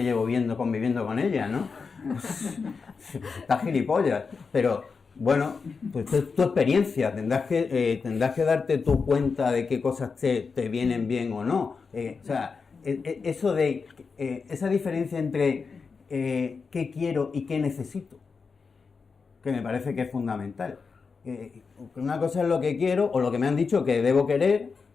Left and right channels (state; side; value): quieter; right; 5.1 dB